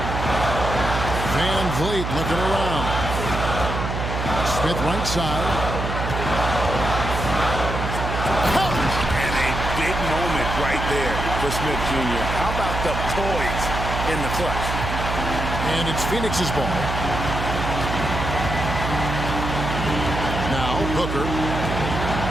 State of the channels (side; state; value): right; noise; hum, 3 dB below the sound